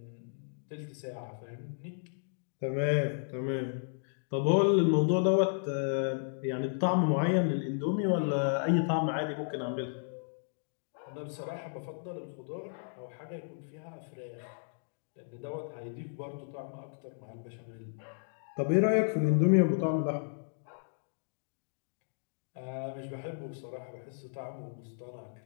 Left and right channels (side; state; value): right; silent; digital silence